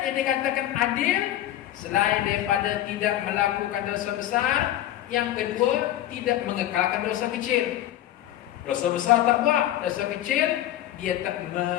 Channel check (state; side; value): quieter; right; 13.0 dB